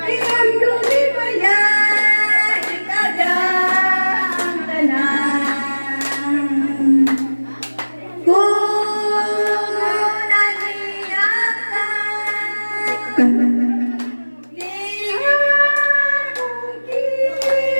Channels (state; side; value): inverted; both; correlation -1.00